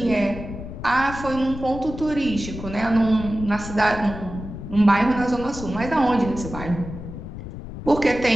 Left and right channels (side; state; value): left; noise; rumble, 10 dB below the sound